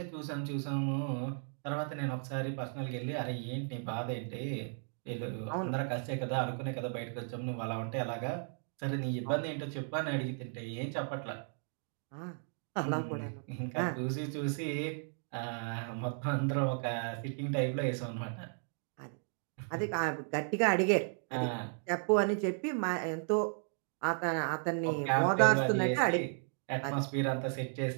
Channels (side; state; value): left; silent; 54 dB below the other